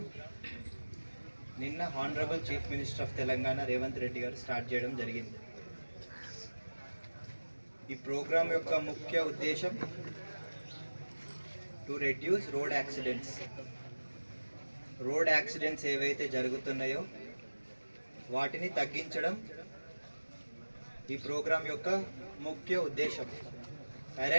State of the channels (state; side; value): inverted; both; correlation -1.00